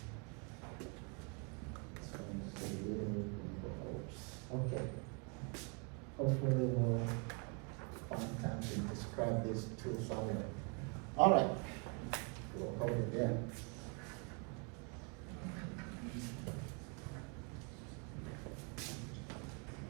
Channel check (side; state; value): left; quieter; 35.6 dB